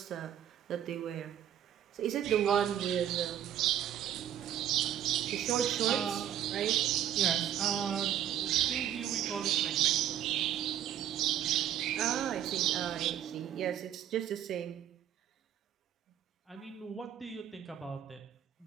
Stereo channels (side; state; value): left; quieter; 10.6 dB